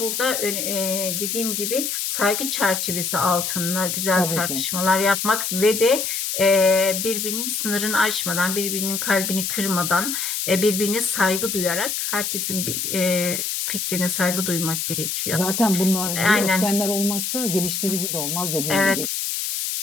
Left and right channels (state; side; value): noise; left; hiss, 2 dB below the sound